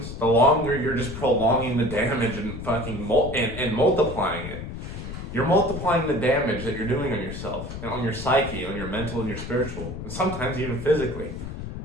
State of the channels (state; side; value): noise; left; rumble, 8 dB below the sound